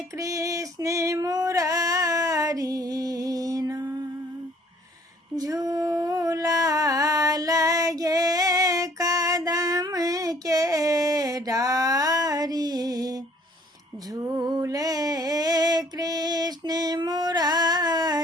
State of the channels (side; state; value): both; normal; correlation 0.58